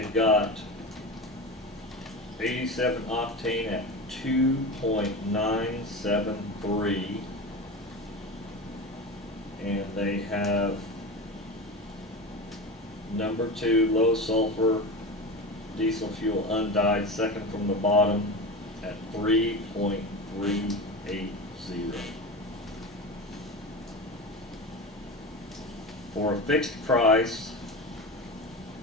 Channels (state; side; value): normal; both; correlation 0.26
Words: got 87 octane at 2.973, and they have number 2 low sulfur diesel fuel undyed, second from the bottom, at 3.380. For a fixed price,